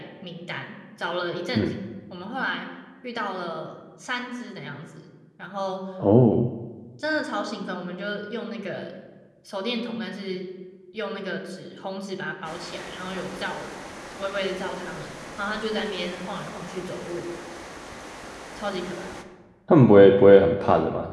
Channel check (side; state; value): both; identical; correlation 1.00